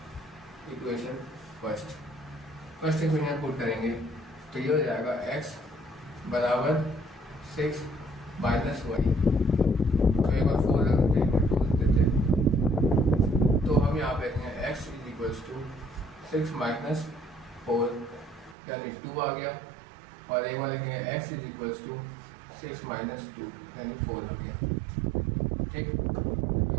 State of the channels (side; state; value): left; drops out; at 18.6 s